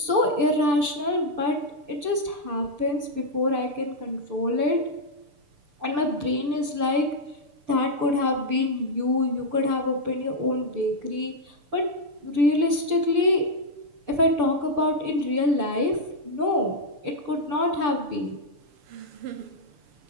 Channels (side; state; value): left; late; 6.8 ms